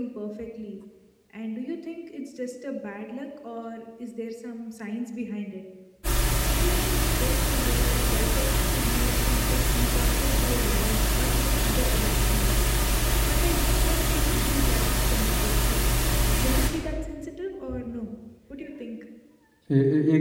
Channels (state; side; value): identical; both; correlation 1.00